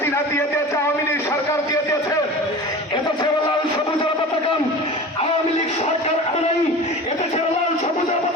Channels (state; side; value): normal; both; correlation 0.35